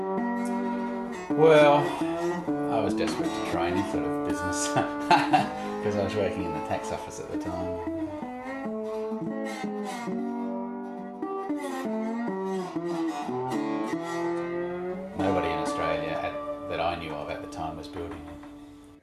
Well, I was desperate to try any sort of business because I was working in the tax office at the time. Nobody in Australia that I knew of at the time was building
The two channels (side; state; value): both; identical; correlation 1.00